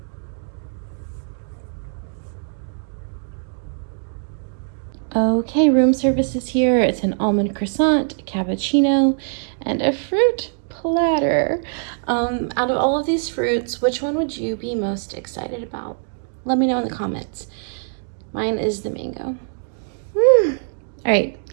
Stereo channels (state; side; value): silent; left; digital silence